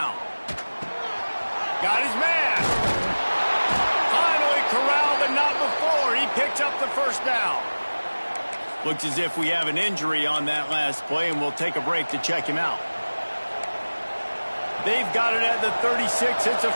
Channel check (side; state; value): both; inverted; correlation -1.00